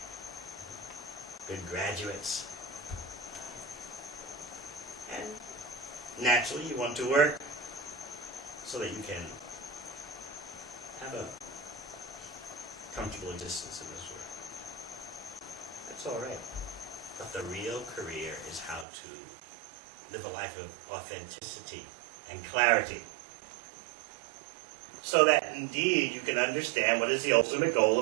good graduates, and naturally you want to work so that you can have a comfortable existence in this world. That's all right. But the real career is how to live a life of authenticity and clarity, so that indeed you can understand what is the ultimate goal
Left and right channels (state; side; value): drops out; left; at 18.9 s